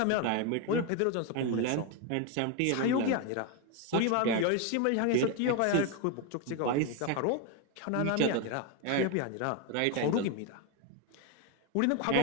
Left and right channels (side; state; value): both; different; correlation 0.02